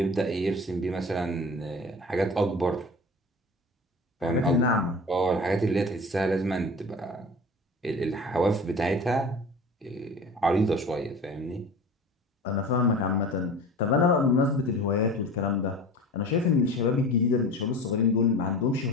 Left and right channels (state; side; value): normal; both; correlation 0.37